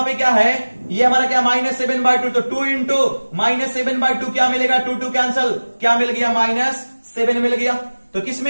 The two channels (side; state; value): both; inverted; correlation -1.00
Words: पे क्या है, ये हमारा क्या -7/2, तो 2 इंटू -7/2 क्या मिलेगा, 2 कैंसल, क्या मिल गया -7 मिल गया। तो